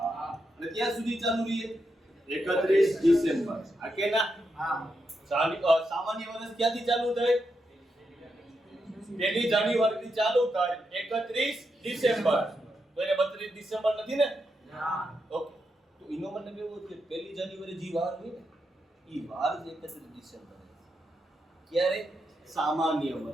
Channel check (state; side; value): normal; both; correlation 0.84